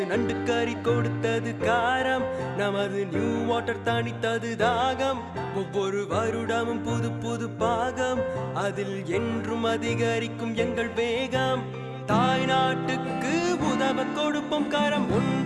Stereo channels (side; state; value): both; identical; correlation 1.00